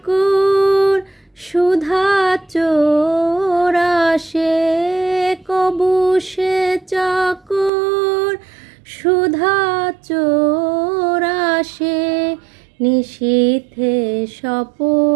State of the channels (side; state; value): left; drops out; at 7.7 s